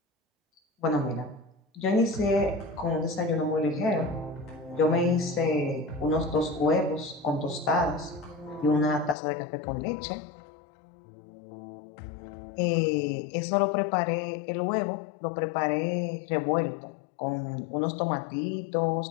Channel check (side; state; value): right; drops out; at 9.2 s